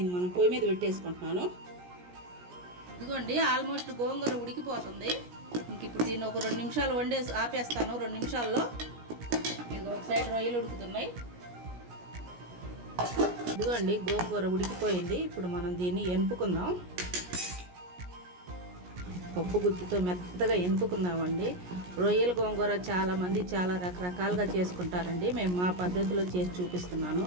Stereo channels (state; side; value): late; left; 17 ms